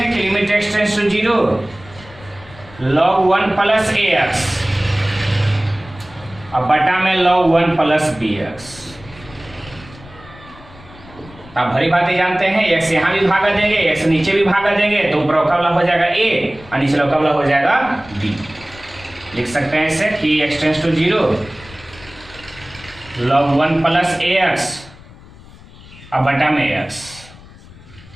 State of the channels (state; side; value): noise; left; rumble, 21 dB below the sound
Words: कि limit x tends to 0 log 1 plus ax और बटा में log 1 प्लस bx, आप भरी बातें जानते हैं, x यहाँ भी भागा देंगे, x नीचे भी भागा देंगे, तो ऊपर का वाला हो जाएगा a और नीचे का वाला हो जाएगा b। लिख सकते हैं इसे कि x tends to 0 log 1 plus ax और बटा में x